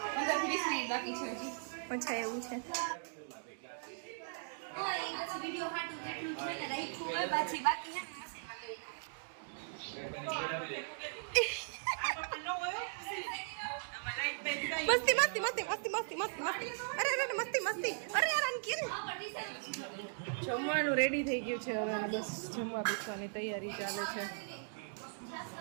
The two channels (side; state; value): left; silent; digital silence